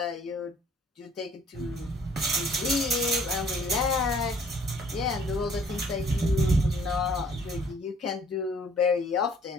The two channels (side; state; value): both; normal; correlation 0.57